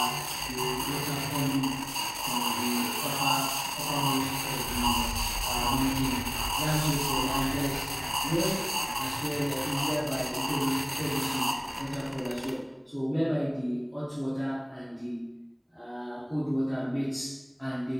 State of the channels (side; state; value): both; identical; correlation 1.00